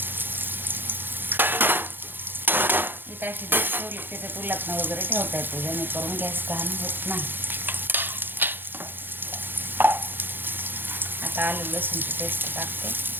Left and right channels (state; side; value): late; left; 0.097 ms